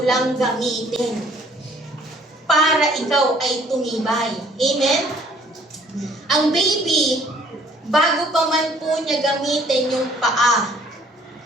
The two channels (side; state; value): both; normal; correlation 0.59